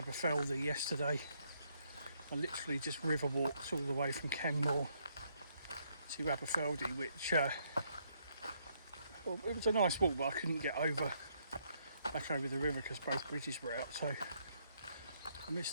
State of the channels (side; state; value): both; inverted; correlation -0.72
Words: yesterday. I literally just river walked all the way from Kenmore to Aberfeldy, which well, it was a nice walk, but I couldn't get back over the river because both bridges were out, so I missed